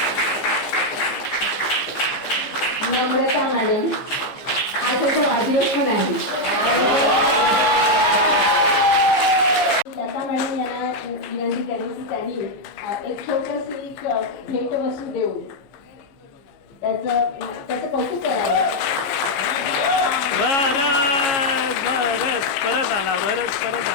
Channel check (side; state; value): right; late; 15 ms